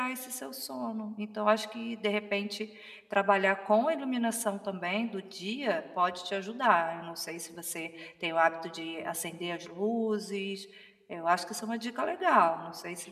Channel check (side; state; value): both; identical; correlation 1.00